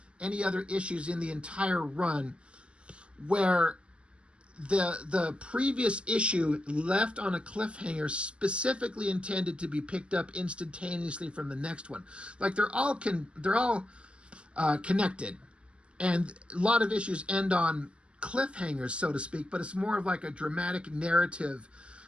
any other issues in the entire run where the previous issue left on a cliffhanger specifically intended to be picked up instantaneously from the next one. Like they're all connected, and a lot of issues end on cliffhangers, so to speak, but it's more of like a dramatic narrative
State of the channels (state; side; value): late; left; 0.058 ms